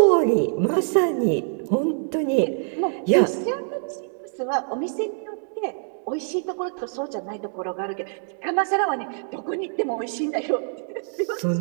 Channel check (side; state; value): left; silent; 62 dB below the other